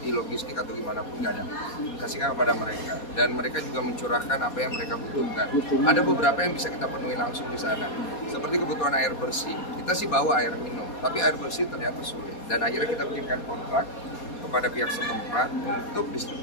di logistik atau gimana pun, nggak ada. Kasihkan kepada mereka, dan mereka juga mencurahkan apa yang mereka butuhkan. Ada beberapa yang bisa kita penuhi langsung di sana, seperti kebutuhan air bersih. Kita sih bawa air minum, tapi air bersih ternyata sulit. Dan akhirnya kita bikinkan kontrak kepada pihak setempat untuk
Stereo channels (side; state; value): right; late; 4.2 ms